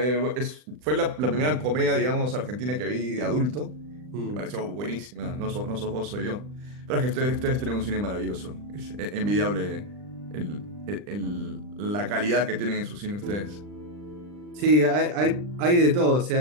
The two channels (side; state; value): left; late; 39 ms